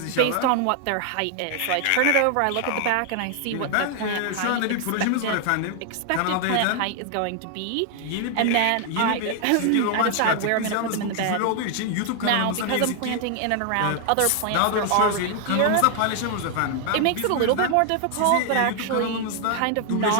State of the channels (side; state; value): both; different; correlation 0.00